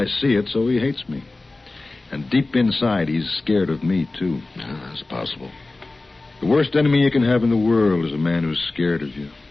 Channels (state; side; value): quieter; right; 3.2 dB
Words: see it, so he hates me. And deep inside, he's scared of me, too. Yeah, that's possible. The worst enemy you can have in the world is a man who's scared of you.